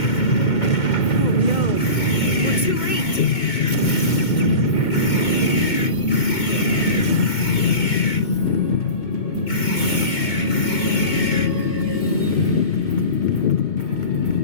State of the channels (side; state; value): right; late; 2.2 ms